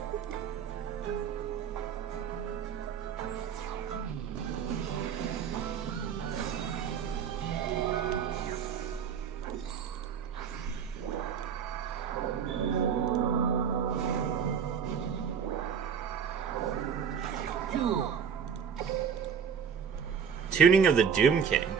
Tuning of the Doom King.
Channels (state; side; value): quieter; left; 7.2 dB